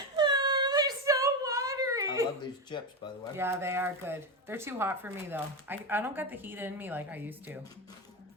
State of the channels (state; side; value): normal; both; correlation 0.14